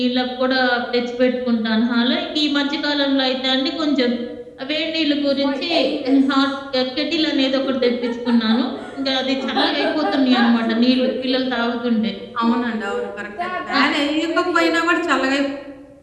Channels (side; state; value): both; identical; correlation 1.00